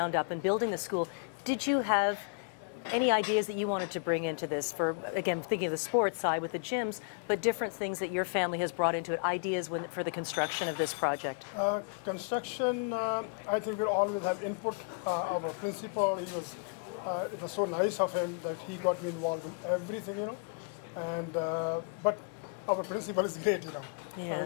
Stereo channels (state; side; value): quieter; right; 37.1 dB